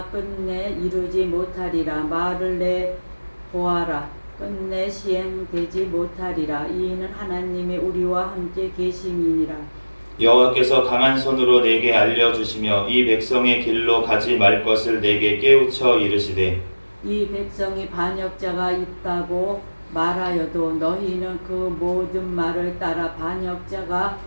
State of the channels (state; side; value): inverted; both; correlation -1.00